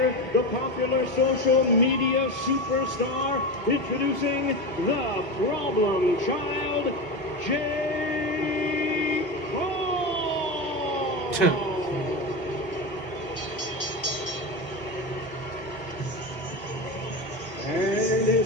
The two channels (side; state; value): both; normal; correlation 0.20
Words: the popular social media superstar, introducing the problem child, Jake Paul. And